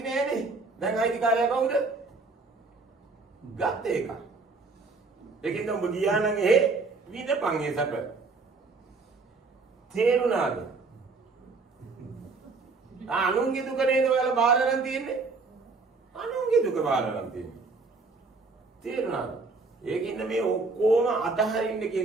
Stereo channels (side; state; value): left; quieter; 3.9 dB